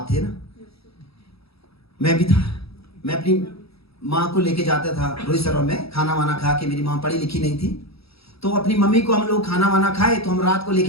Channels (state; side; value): late; right; 0.77 ms